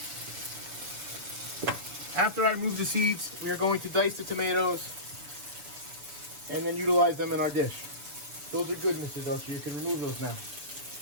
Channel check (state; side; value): late; left; 7.0 ms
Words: After I remove the seeds, we are going to dice the tomatoes and then utilize them in our dish. Those are good, Mr. Delcher. You can remove those now.